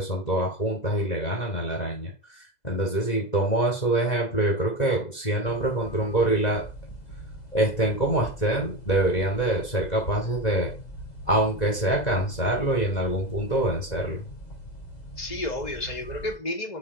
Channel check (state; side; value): late; right; 2.0 ms